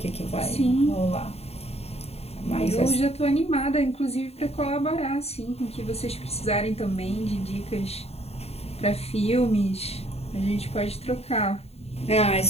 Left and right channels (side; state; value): right; late; 0.30 ms